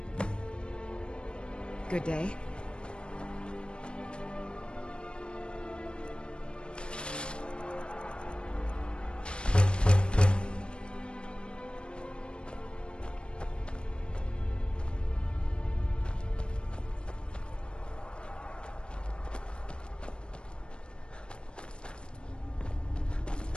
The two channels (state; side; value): late; right; 0.055 ms